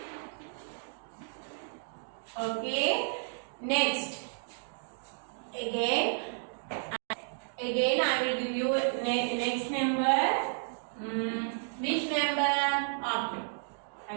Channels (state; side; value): silent; left; digital silence